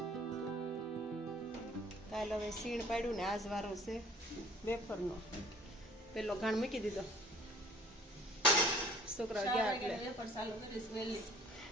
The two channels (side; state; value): both; normal; correlation 0.53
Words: કાલે હવે સીણ પાડ્યું ને આજ વારો છે વેફરનો. પેલો ઘાણ મૂકી દીધો. છોકરા ગયા એટલે